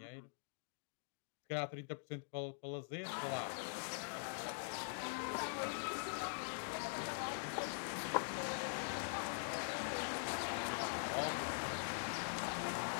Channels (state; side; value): silent; right; digital silence